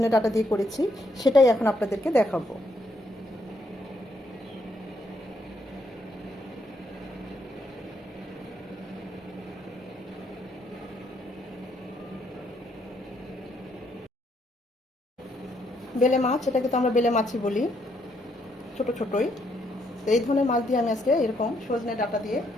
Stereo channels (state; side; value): normal; both; correlation 0.73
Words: ডাঁটা দিয়ে করেছি সেটাই এখন আপনাদেরকে দেখাবো। বেলে মাছ, এটাকে তো আমরা বেলে মাছই বলি, ছোট ছোটই। তো এই ধরনের মাছ দিয়ে আমি আজকে এরকম সজনে ডাঁটা দিয়ে